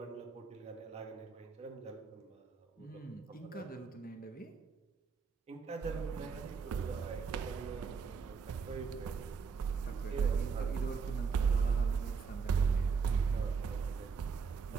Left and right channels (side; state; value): left; quieter; 5.6 dB